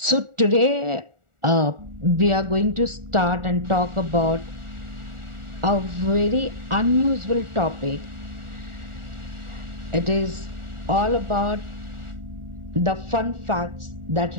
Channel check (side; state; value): left; late; 1.4 ms